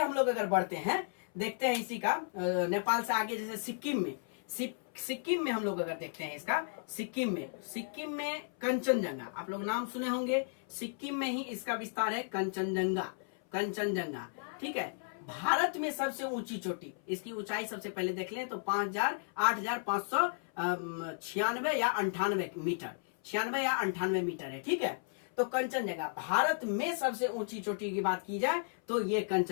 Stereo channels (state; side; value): silent; right; 55 dB below the other